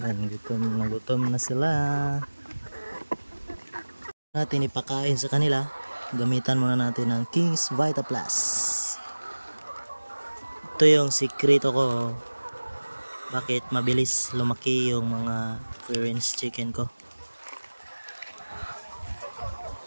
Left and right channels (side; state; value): both; inverted; correlation -1.00